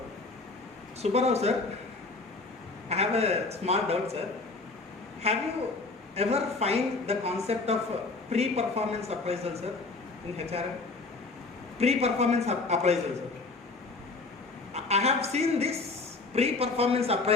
Subbarao sir, I have a small doubt sir. Have you ever find the concept of pre-performance appraisal sir in HRM? Pre-performance appraisal sir. I have seen this pre-performance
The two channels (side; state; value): right; quieter; 3.7 dB